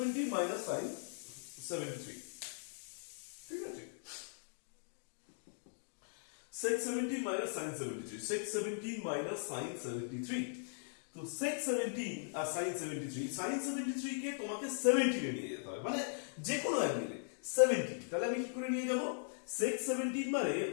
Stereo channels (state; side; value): silent; right; digital silence